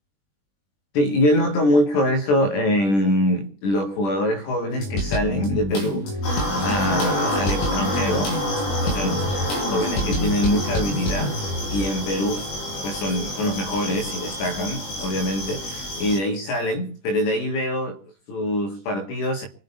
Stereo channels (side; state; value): right; late; 20 ms